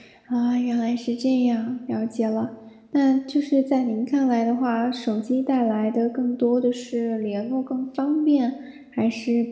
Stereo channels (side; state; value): both; identical; correlation 1.00